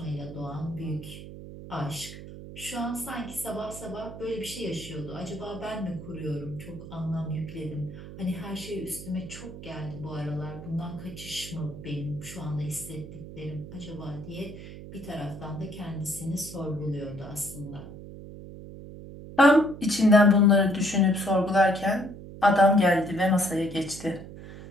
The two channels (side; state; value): right; noise; hum, 13 dB below the sound